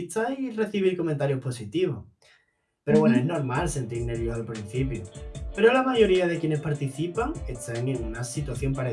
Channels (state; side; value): identical; both; correlation 1.00